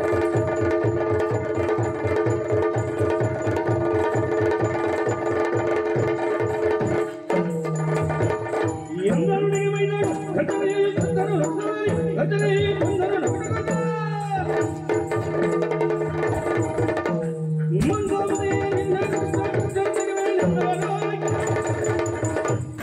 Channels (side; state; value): both; identical; correlation 1.00